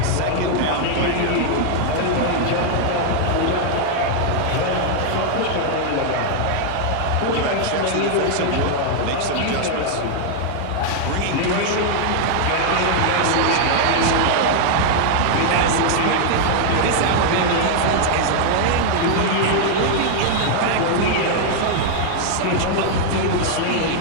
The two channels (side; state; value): both; different; correlation 0.00